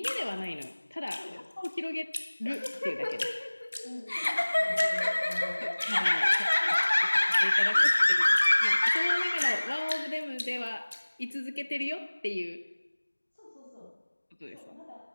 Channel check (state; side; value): inverted; both; correlation -1.00